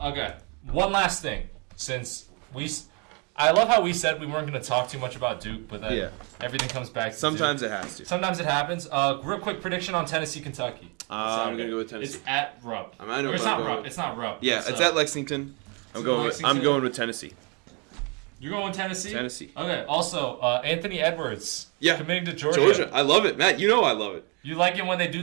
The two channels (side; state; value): left; quieter; 32.9 dB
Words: One last thing, since I love how we said we weren't going to talk too much about Duke, but then everything comes back to Sometimes Duke. it has to. Sometimes it happens. Real quick prediction on Tennessee, Kentucky. I'm going to go with Tennessee. It's at Rupp. I know it's not Rupp. It's not Rupp. Yeah, it's at Lexington. I'm going with Tennessee. You're going with Tennessee? Tennessee. Okay. Also, Anthony Edwards. Yeah. Committing to Georgia. I love it. Matt, you know I love it. You like it when they do